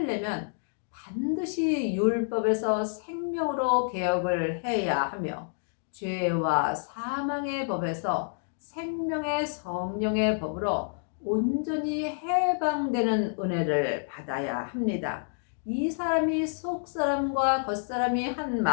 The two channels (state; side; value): silent; right; digital silence